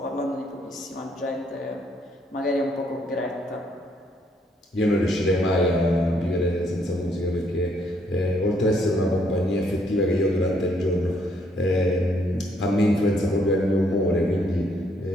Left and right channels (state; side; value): normal; both; correlation 0.70